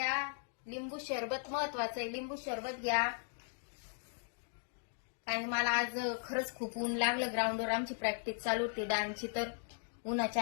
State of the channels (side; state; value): right; silent; 53 dB below the other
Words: लिंबू सरबत महत्वाचं आहे, लिंबू सरबत घ्या. आणि मला आज खरंच खूप ऊन लागलं. ग्राउंडवर आमची प्रॅक्टिस चालू होती डान्सची, तर